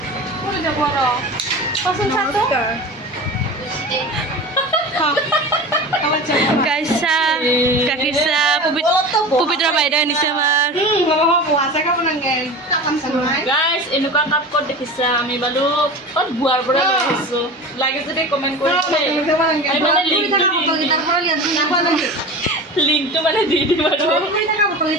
Kaisa, Kakisa, Pupitra বাইদেউ আনিছে আমাৰ গাইস এনেকুৱা কাপ ক'ত দেখিছা আমি বালু ক'ত বুৱাৰ পৰা লৈ আহিছো লাগে যদি কমেন্ট কৰি আমি মানে লিংকটো মানে দি দিম আৰু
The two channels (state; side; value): normal; both; correlation 0.32